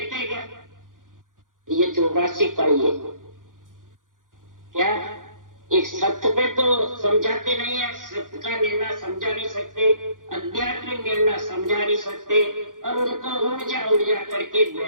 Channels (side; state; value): left; late; 0.89 ms